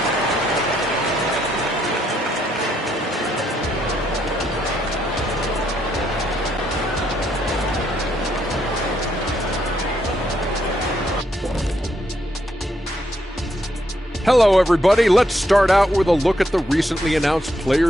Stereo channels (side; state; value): both; normal; correlation 0.76